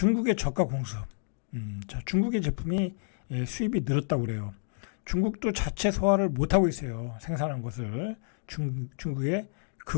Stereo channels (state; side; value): silent; right; digital silence